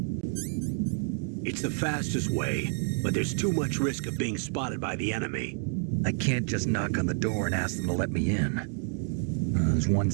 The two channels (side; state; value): left; silent; 59 dB below the other